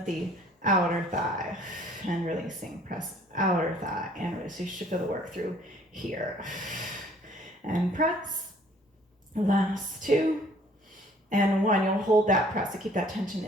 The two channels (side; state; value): both; normal; correlation 0.57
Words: the outer thigh and releasing. Press outer thigh and release. So you should feel the work through here. And press. Last 2 and 1. You'll hold that press to keep that tension